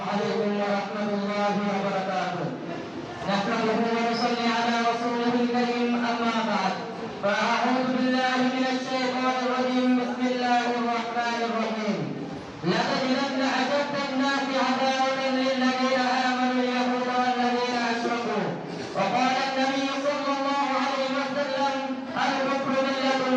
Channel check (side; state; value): both; identical; correlation 1.00